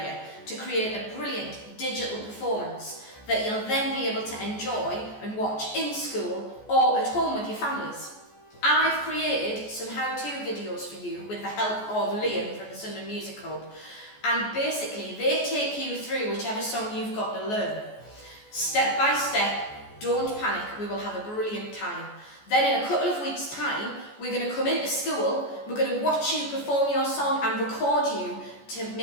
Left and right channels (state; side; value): late; right; 14 ms